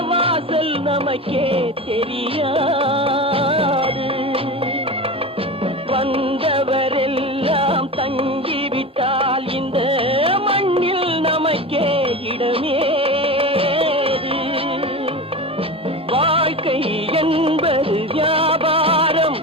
வாசல் நமக்கே தெரியாது. வந்தவரெல்லாம் தங்கிவிட்டால் இந்த மண்ணில் நமக்கே இடமேது. வாழ்க்கை என்பது வியாபாரம்,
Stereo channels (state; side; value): normal; both; correlation 0.27